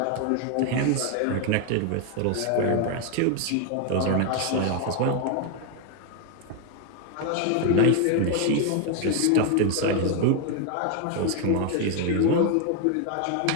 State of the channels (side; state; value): both; different; correlation 0.01